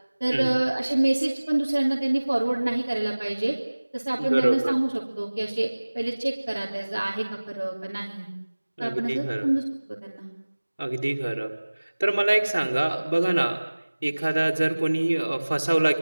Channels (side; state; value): both; inverted; correlation -1.00